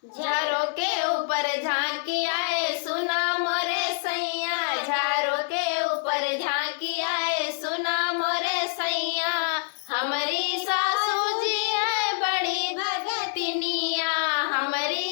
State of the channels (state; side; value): silent; right; 61 dB below the other